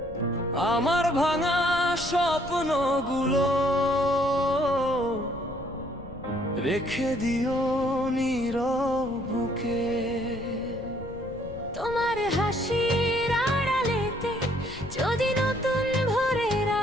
আমার ভাঙা স্বপ্নগুলো রেখে দিও নীরব বুকে। তোমার হাসির আড়ালেতে যদি নতুন ভোরের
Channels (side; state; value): left; noise; rumble, 15 dB below the sound